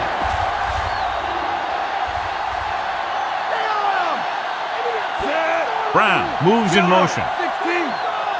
Brown moves in motion. 16.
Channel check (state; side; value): identical; both; correlation 1.00